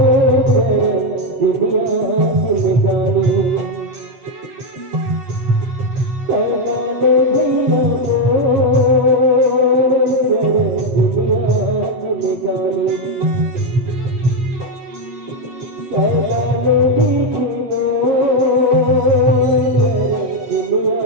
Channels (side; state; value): left; late; 7.5 ms